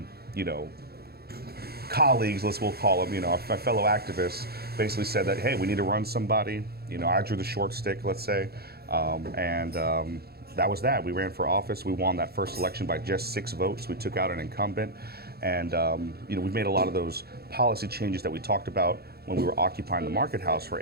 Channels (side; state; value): left; late; 0.46 ms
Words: colleagues, we'll call them, my fellow activists, basically said that, hey, we need to run somebody. I drew the short stick, let's say. That was that. We ran for office. We won that first election by just 6 votes. We took out an incumbent. And, we've made a lot of those policy changes that we talked about when we were occupying the Market House for